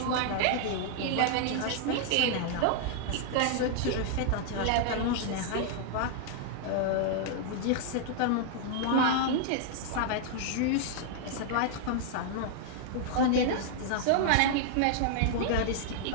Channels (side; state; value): both; different; correlation -0.01